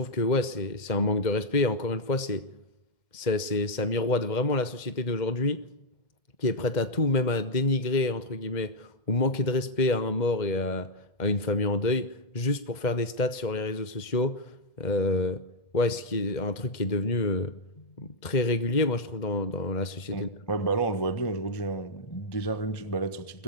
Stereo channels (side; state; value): right; late; 2.1 ms